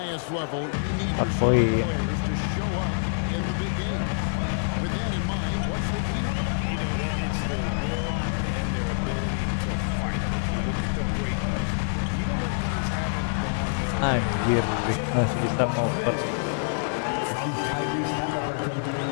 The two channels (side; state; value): right; silent; digital silence